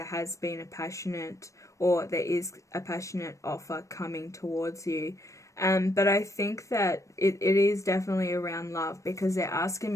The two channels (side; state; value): right; late; 0.15 ms